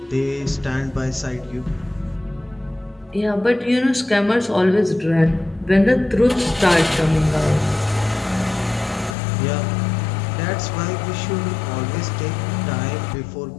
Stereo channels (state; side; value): drops out; right; at 9.2 s